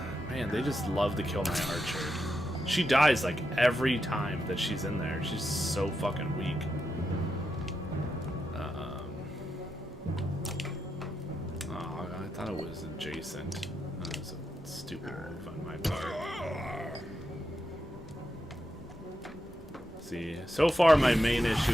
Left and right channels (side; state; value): both; normal; correlation 0.86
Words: Man, they just love to kill my archer. She dies like every time that she's in there. She's so fucking weak. Oh, I thought it was adjacent. That was a stupid move on my part. See, so far my main